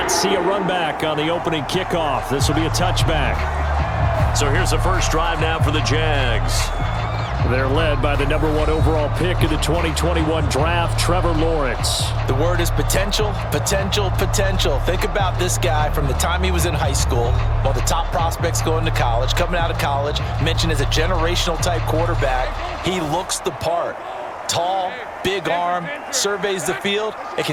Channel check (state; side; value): identical; both; correlation 1.00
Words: see a run back on the opening kickoff. This will be a touchback. So here's the first drive now for the Jags. They're led by the #1 overall pick of the 2021 draft, Trevor Lawrence. The word is potential, potential, potential. Think about this guy from the time he was in high school, one of the top prospects going to college, coming out of college, mentioned as a generational type quarterback. He looks the part. Tall, big arm, surveys the field, and